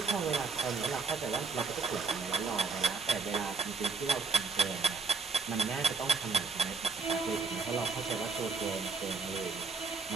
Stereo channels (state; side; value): quieter; left; 4.6 dB